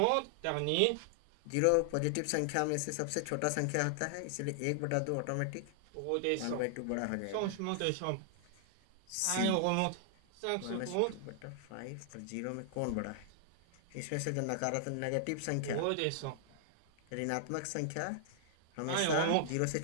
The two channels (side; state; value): both; different; correlation -0.01